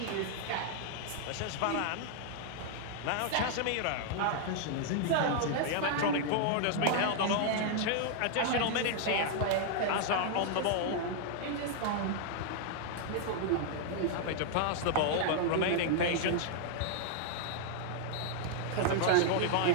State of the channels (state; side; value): different; both; correlation -0.01